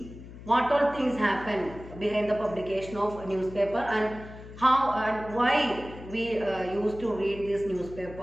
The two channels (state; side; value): noise; left; hum, 15 dB below the sound